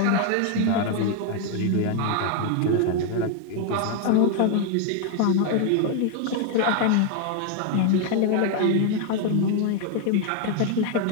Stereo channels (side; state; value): both; different; correlation 0.01